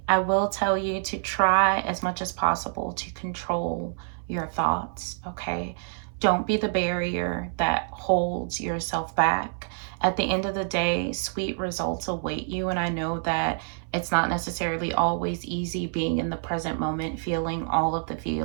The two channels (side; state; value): left; silent; 58 dB below the other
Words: I will tell you to try as much as possible to control your thoughts, okay? Don't be the barrier that holds yourself back. At the end of the day, sweet results await you, and I know that it's not necessarily always easy being in the present moment, feeling all of the